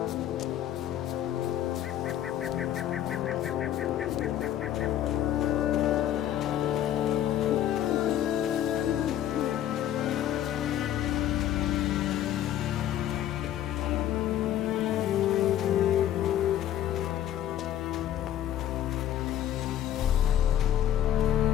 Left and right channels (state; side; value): quieter; right; 11.5 dB